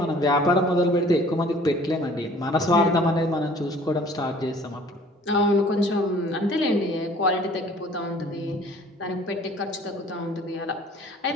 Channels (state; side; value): normal; both; correlation 0.52